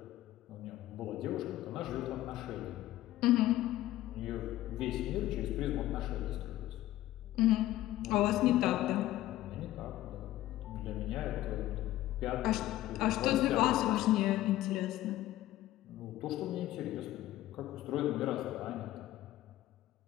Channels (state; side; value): quieter; right; 15.0 dB